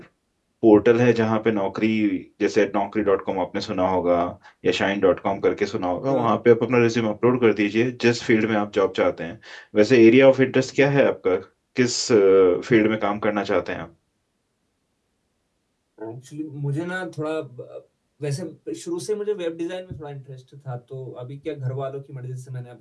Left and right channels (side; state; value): both; identical; correlation 1.00